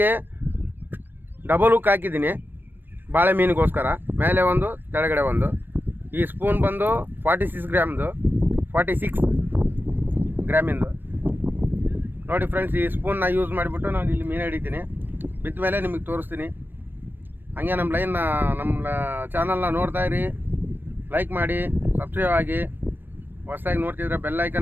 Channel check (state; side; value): late; left; 0.095 ms